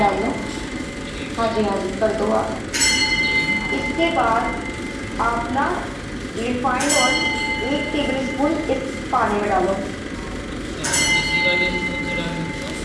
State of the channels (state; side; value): identical; both; correlation 1.00